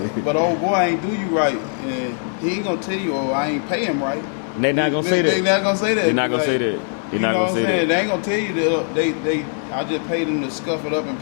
But old boy ain't do you right, and he ain't gonna tell you, oh, I ain't pay him right. They not gonna say that. They not gonna say that. They not gonna say that. You know what I'm saying? They ain't gonna tell you that I just paid them to scuff it up and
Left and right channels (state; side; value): silent; right; 58 dB below the other